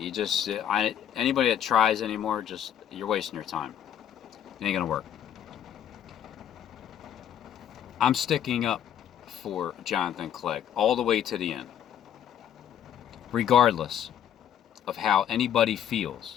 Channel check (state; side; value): quieter; right; 9.9 dB